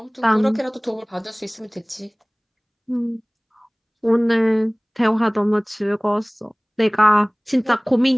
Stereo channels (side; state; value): both; identical; correlation 1.00